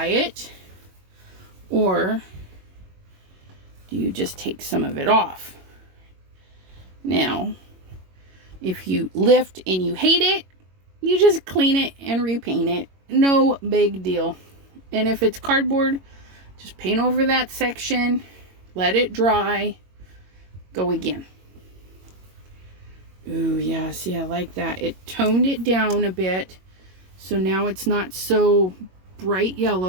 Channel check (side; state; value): left; late; 22 ms